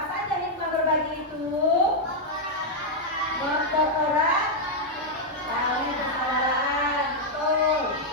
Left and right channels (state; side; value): normal; both; correlation -0.03